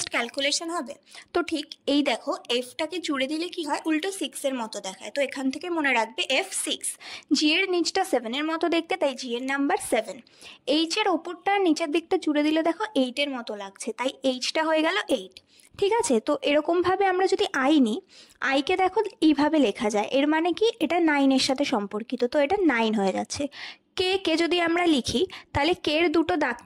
ক্যালকুলেশন হবে। তো ঠিক এই দেখো, এফটাকে জুড়ে দিলে কি হয়, উল্টো 6-এর মতো দেখায়। তো এখান থেকে মনে রাখবে F6। জি এর নিচটা 7-এর মতো দেখতে, তাই জি এর নাম্বার 7। এইচ এর ওপরটা নিচের দিকটা জুড়ে দিলে দেখো 8-এর মতো লাগছে, তাই এইচটা হয়ে গেল 8। ঠিক আছে, তো এরকমভাবে আমরা যদি আই নিই, আইকে দেখো এইভাবে লেখা যায়, এর মানে কি এটা 9-এর সাথে সম্পর্কিত, তো এটা 9 হয়ে যাচ্ছে। কে যদি আমরা লিখি, তাহলে কের দুটো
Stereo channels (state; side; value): identical; both; correlation 1.00